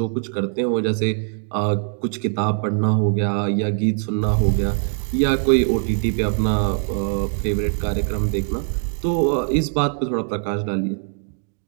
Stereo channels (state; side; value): silent; left; 57 dB below the other